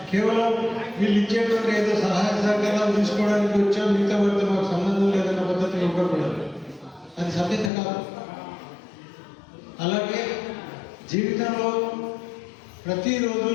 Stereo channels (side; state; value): right; drops out; at 7.7 s